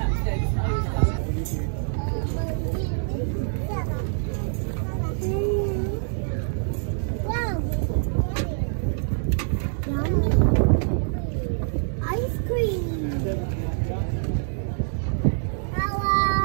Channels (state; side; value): silent; left; digital silence